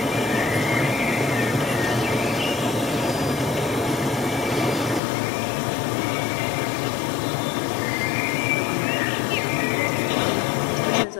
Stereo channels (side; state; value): right; drops out; at 5.0 s